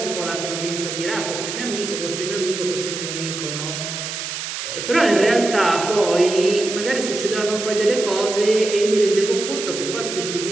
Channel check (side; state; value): right; noise; hiss, 6 dB below the sound